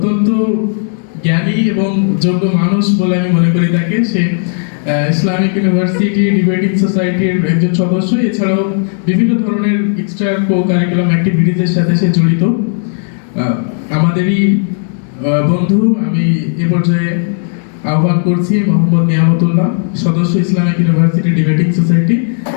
জ্ঞানী এবং যোগ্য মানুষ বলে আমি মনে করি তাকে। সে ইসলামিক ইউনিভার্সিটি ডিবেটিং সোসাইটির একজন সদস্য, এছাড়াও বিভিন্ন ধরনের এক্সট্রা কো-কারিকুলাম অ্যাক্টিভিটিজের সাথে সে জড়িত। আমাদেরই বন্ধু, আমি এ পর্যায়ে আহ্বান করছি মোহাম্মদ নিয়ামতুল্লাহ, সদস্য ইসলামিক ইউনিভার্সিটি ডিবেটিং সোসাইটি,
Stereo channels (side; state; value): right; silent; 62 dB below the other